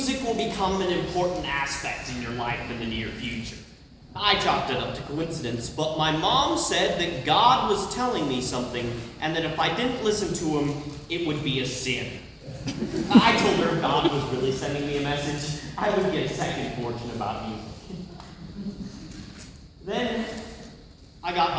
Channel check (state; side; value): identical; both; correlation 1.00